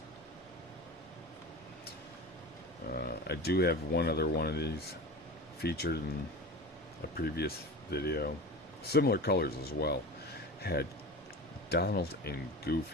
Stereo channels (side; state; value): both; normal; correlation 0.31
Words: I do have one other one of these featured in a previous video. Similar colors as well. Had Donald and